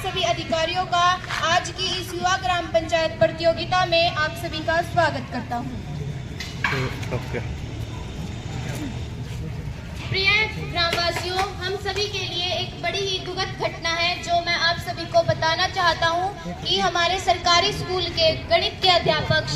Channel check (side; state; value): both; identical; correlation 1.00